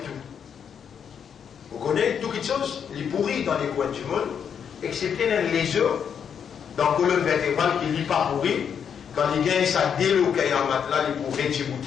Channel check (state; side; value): quieter; right; 7.6 dB